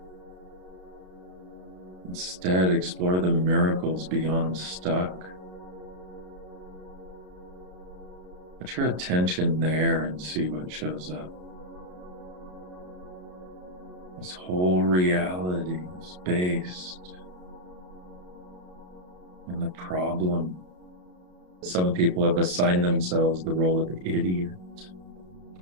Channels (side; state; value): left; late; 33 ms